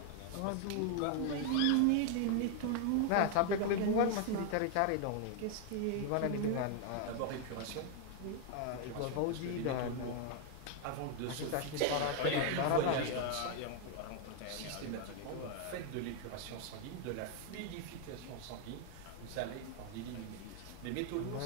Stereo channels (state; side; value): different; both; correlation 0.00